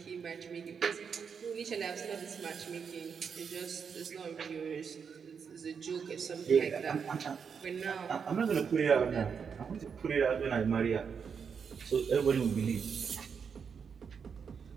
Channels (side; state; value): left; quieter; 6.5 dB